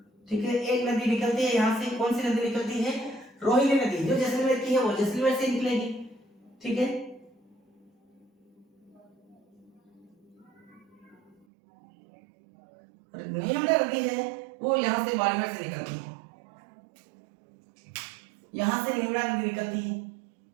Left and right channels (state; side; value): drops out; left; at 11.5 s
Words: ठीक है, एक नदी निकलती है यहां से। कौन सी नदी निकलती है? रोहिणी नदी, जो जैसलमेर की है वो जैसलमेर से निकलेगी। ठीक है, नेमड़ा नदी है वो यहां से बाड़मेर से निकलती है, यहां से नेमड़ा नदी निकलती है।